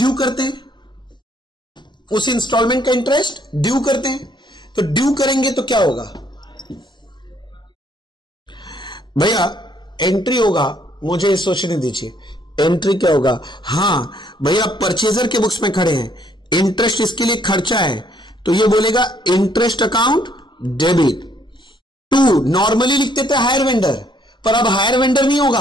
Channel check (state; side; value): normal; both; correlation 0.67